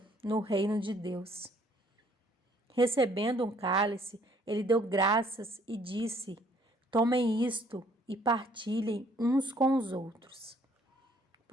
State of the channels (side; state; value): both; normal; correlation 0.62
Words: no reino de Deus. Recebendo um cálice, ele deu graças e disse: Tomem isto e partilhem uns com os outros.